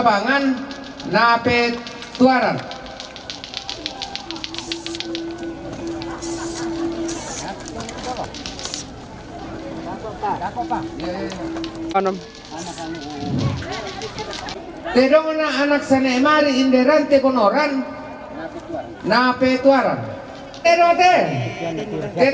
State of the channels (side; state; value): both; identical; correlation 1.00